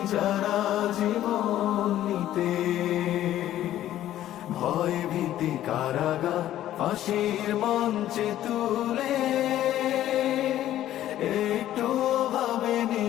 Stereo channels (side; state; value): right; quieter; 12.8 dB